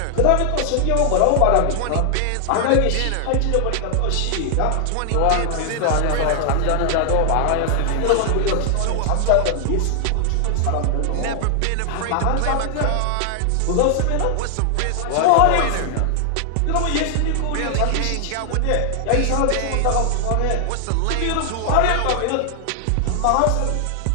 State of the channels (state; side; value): different; both; correlation 0.00